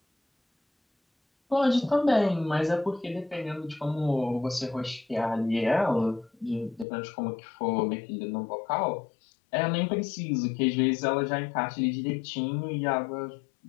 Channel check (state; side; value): drops out; right; at 6.9 s